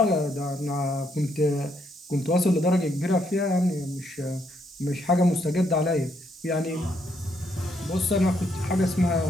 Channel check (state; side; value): normal; both; correlation 0.74